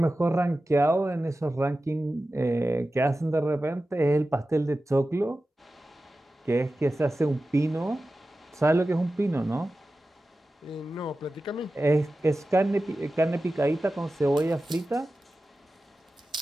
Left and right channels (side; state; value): both; normal; correlation 0.94